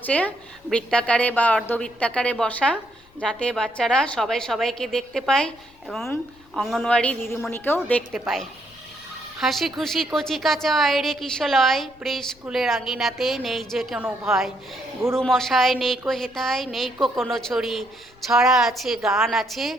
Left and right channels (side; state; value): left; noise; rumble, 28 dB below the sound